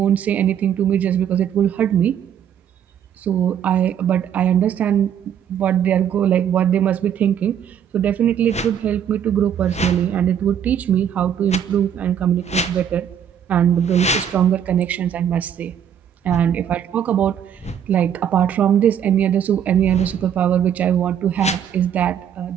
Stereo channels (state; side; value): quieter; left; 8.9 dB